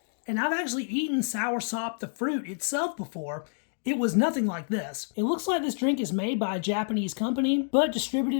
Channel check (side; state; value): right; silent; digital silence